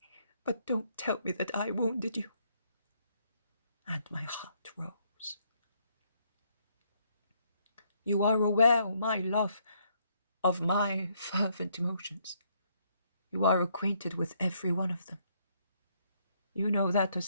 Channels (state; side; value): inverted; both; correlation -0.71